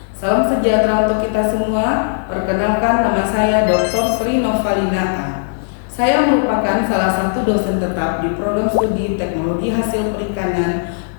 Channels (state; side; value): silent; right; digital silence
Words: Salam sejahtera untuk kita semua. Perkenalkan, nama saya Dr. Sri Novalina A. Saya merupakan salah satu dosen tetap di program studi Teknologi Hasil Perikanan